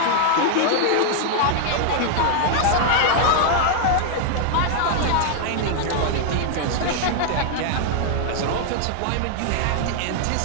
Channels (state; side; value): different; both; correlation 0.00